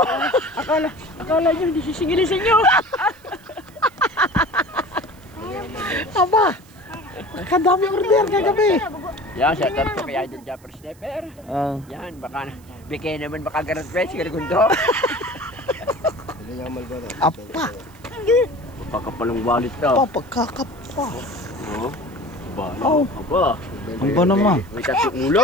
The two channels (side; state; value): right; noise; hiss, 28 dB below the sound